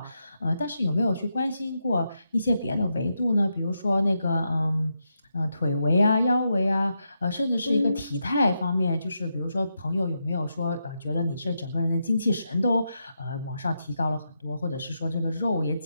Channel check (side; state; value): both; inverted; correlation -0.84